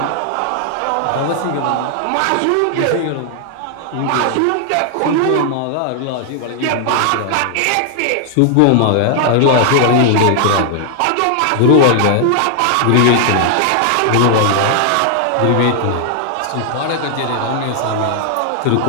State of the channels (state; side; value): different; both; correlation 0.00